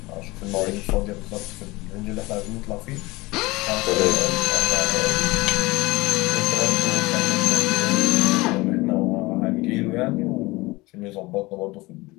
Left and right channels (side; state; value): right; quieter; 21.8 dB